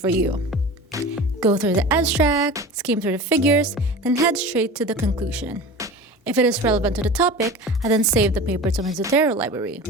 you. Go through the abstract, skim through the figures, then head straight to the conclusion. If it is relevant to the topic, I then save the paper to my Zotero library.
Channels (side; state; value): both; normal; correlation 0.34